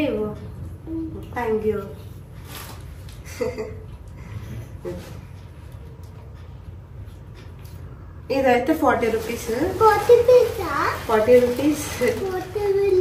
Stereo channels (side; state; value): both; identical; correlation 1.00